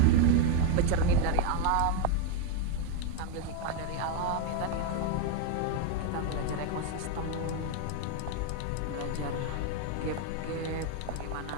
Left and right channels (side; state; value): both; different; correlation 0.02